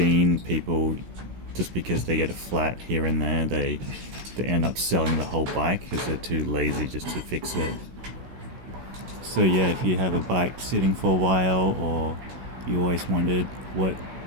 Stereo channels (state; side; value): late; left; 16 ms